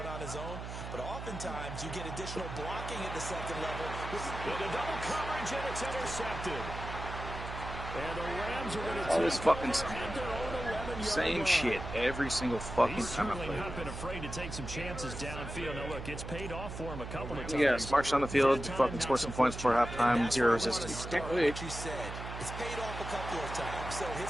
on his own, but oftentimes you get additional blocking at the second level. With a double coverage, and it's intercepted. And the Rams are going to All this fucking same line. shit every single fucking time I play. He's certainly not been afraid to take some chances downfield. Now, look, it's paid off for him a couple of times. Yeah, march down the field, fucking score some points before halftime, 0 resistance. What you said. It's paid off a couple of times. So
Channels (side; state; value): right; noise; hum, 8 dB below the sound